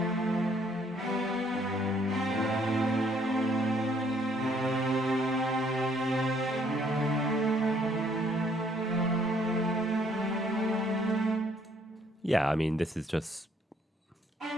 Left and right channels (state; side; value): normal; both; correlation 0.65